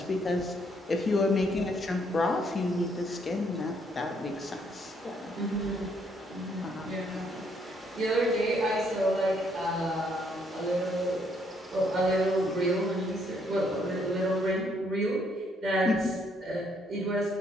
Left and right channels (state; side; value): normal; both; correlation 0.70